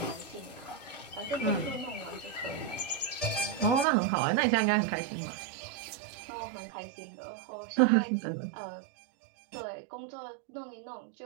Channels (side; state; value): left; drops out; at 3.9 s